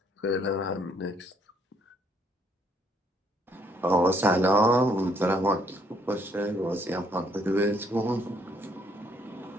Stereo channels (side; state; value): both; normal; correlation 0.68